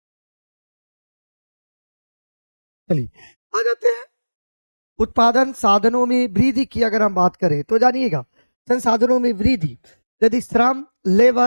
चलिए आ जाते हैं। उत्पादन साधनों में वृद्धि की अगर हम बात करें तो जानिएगा, संसाधनों में वृद्धि यदि श्रम,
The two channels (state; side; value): inverted; both; correlation -1.00